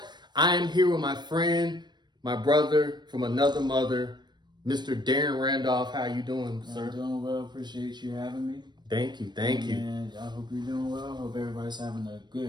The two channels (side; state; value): left; late; 0.21 ms